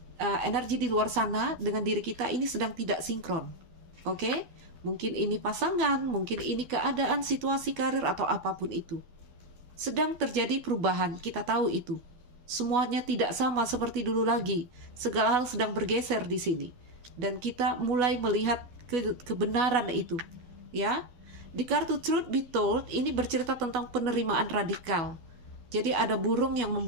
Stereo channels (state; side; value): late; left; 12 ms